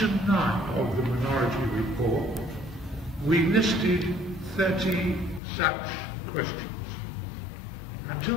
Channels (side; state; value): right; drops out; at 5.4 s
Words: 9 of the minority report, we listed 30 such questions.